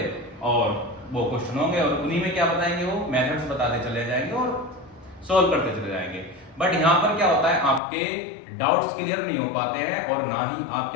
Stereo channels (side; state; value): right; drops out; at 7.8 s